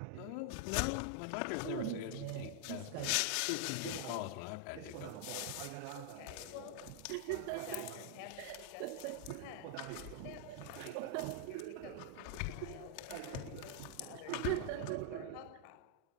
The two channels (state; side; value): different; both; correlation 0.00